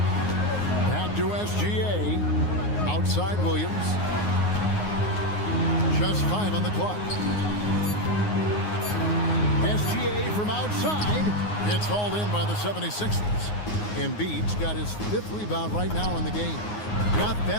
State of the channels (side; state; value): right; late; 9.6 ms